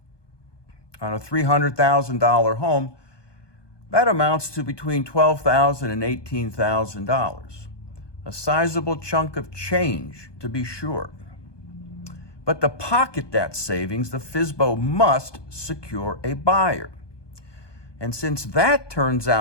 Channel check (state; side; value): late; right; 1.2 ms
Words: On a $300,000 home, that amounts to between $12,000 and $18,000. A sizable chunk of change, to be sure. But to pocket that savings, the FSBO must secure a buyer. And since that turns